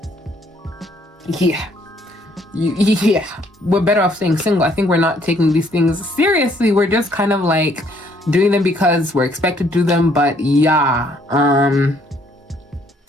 Yeah, we're better off staying single. I think we're not taking these things seriously. We're just kind of like doing them because we're expected to do them. But yeah,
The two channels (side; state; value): both; normal; correlation 0.65